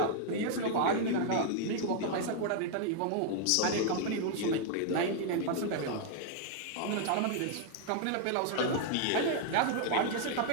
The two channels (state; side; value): different; both; correlation 0.00